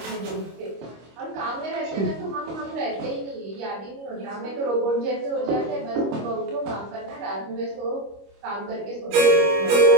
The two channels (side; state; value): left; late; 25 ms